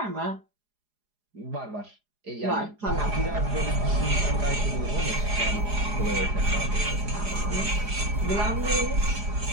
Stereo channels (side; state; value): left; late; 4.8 ms